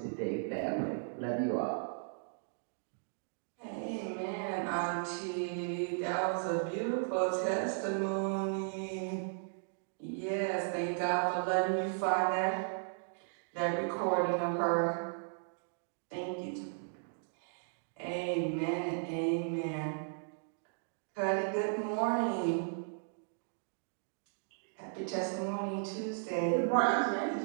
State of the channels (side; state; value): left; silent; digital silence